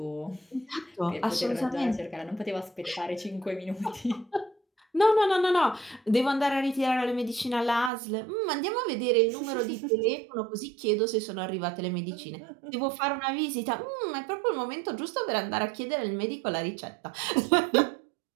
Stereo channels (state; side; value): drops out; left; at 7.9 s